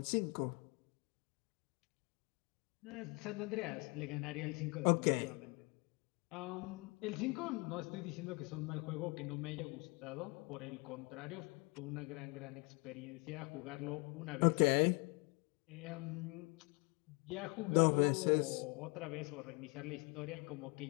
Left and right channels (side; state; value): right; quieter; 29.9 dB